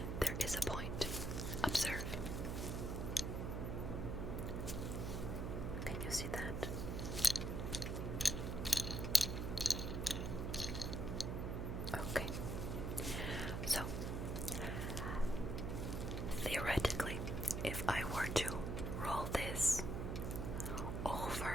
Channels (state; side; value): noise; right; hum, 2 dB below the sound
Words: there is a point. Observe. Can you see that? Okay. So, theoretically, if I were to roll this